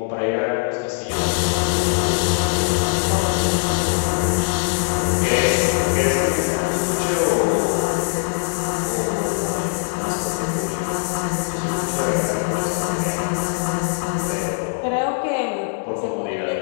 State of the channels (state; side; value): silent; right; digital silence